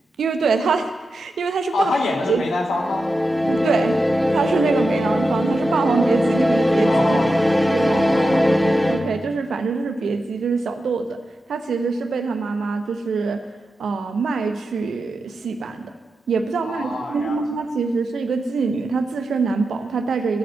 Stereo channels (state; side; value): normal; both; correlation 0.90